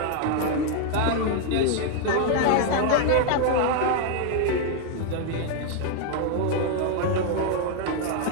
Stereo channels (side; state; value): both; different; correlation 0.00